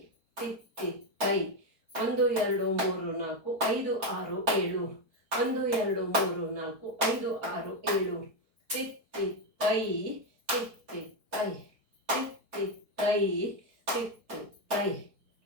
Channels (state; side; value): late; left; 4.7 ms